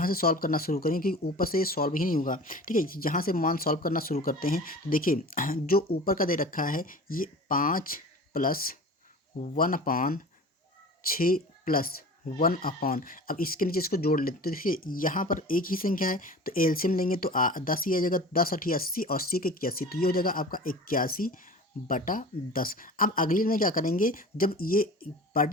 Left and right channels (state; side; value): normal; both; correlation 0.38